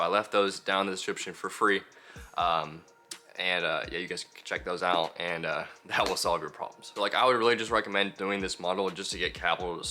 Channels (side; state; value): both; identical; correlation 1.00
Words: left those down in the description for free. Yeah, you guys can check those out, and that will solve your problems. So like, I would really just recommend doing this model just to get capital to